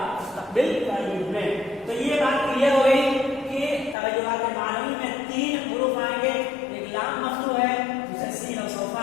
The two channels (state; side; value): drops out; right; at 4.0 s